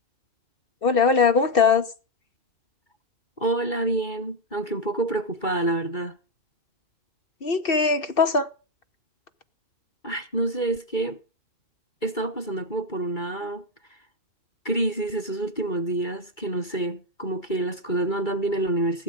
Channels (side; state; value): right; late; 2.3 ms